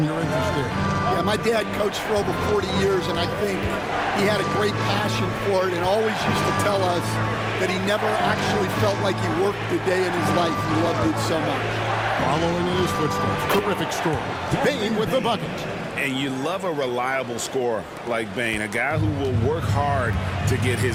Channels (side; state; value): both; identical; correlation 1.00